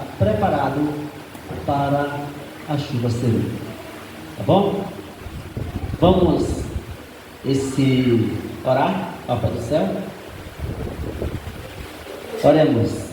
preparados para a chuva serena. Tá bom? Vamos orar ao Pai do céu. Oremos.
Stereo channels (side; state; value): both; identical; correlation 1.00